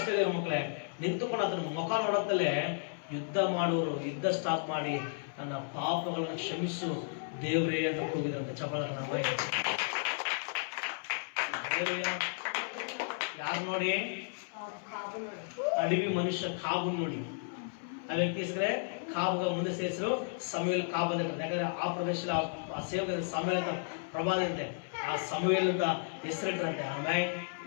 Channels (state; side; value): silent; right; 55 dB below the other